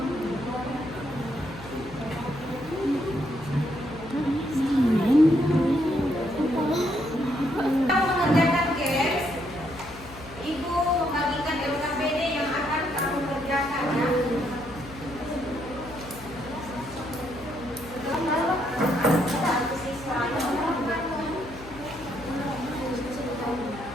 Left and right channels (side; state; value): left; noise; hum, 16 dB below the sound